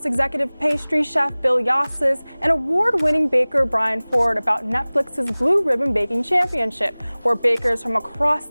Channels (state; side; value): inverted; both; correlation -1.00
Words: executive pastry chef Bill Yosses, and award-winning baker Brian Ford about Netflix's Blue Ribbon Baking Championship, where bakers from across